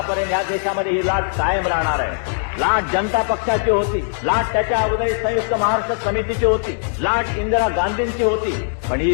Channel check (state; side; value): silent; right; digital silence